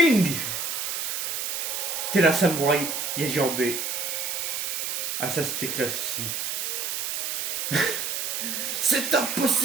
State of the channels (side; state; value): right; noise; hiss, 2 dB below the sound